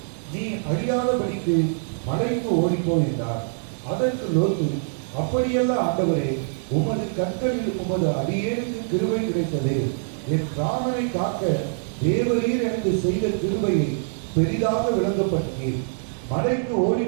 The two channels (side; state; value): left; silent; 60 dB below the other